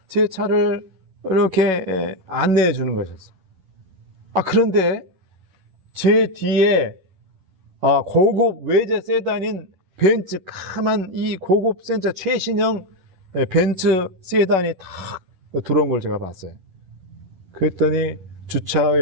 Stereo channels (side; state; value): left; late; 11 ms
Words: 제 차를 이렇게 안내해 주는 것이었어요. 그런데 제 뒤에 고급 외제 세단인 벤츠 까만 이 고급 센차 최신형 벤츠 세단이 탁 들어온 걸 제가 봤어요. 그랬더니